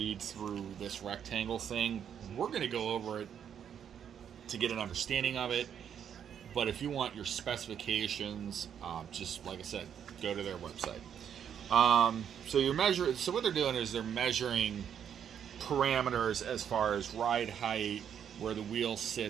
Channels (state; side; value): quieter; left; 8.6 dB